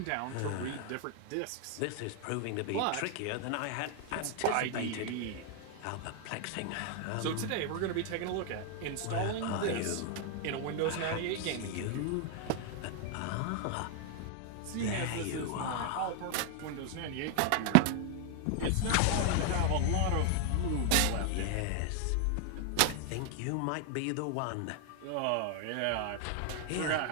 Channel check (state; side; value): different; both; correlation 0.00